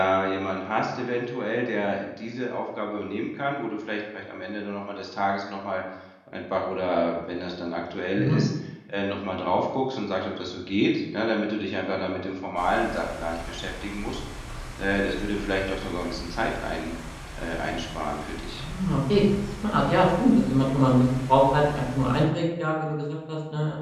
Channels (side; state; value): both; identical; correlation 1.00